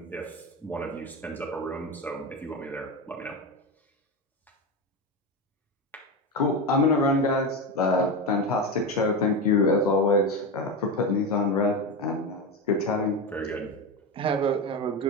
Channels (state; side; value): normal; both; correlation 0.17